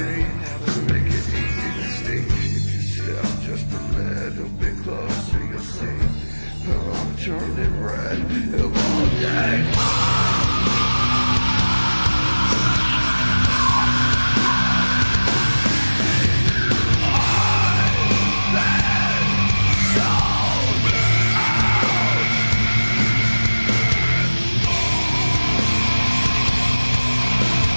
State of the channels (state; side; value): inverted; both; correlation -1.00